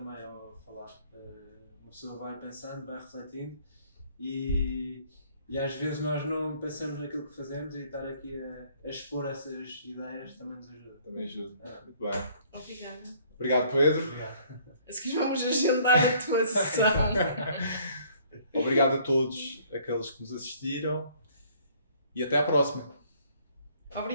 ao falar. Uma pessoa vai pensando, vai refletindo e às vezes nós não pensamos naquilo que fazemos e estar aqui a expor essas ideias também nos ajuda. Também ajuda. Muito bem. Obrigada. Obrigado, Pedro. Obrigado. A seguir vamos agendar a tua sessão. Obrigado a todos aqueles que nos assistiram e até à próxima.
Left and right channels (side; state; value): both; inverted; correlation -0.60